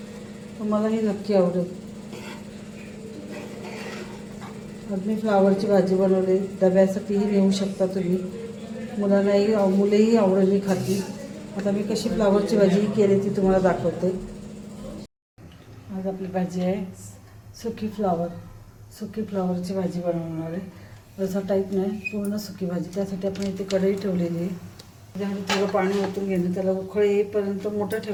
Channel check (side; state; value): both; identical; correlation 1.00